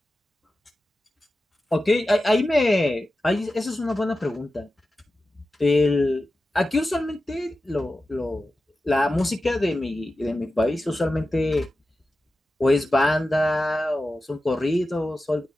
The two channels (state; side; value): normal; both; correlation 0.93